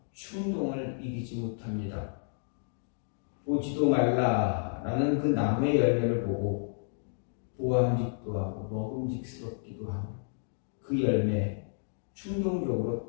충동을 이기지 못합니다. 보지도 말라라는 그 나무의 열매를 보고 보암직도 하고 먹음직스럽기도 하고 그 열매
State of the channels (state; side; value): silent; right; digital silence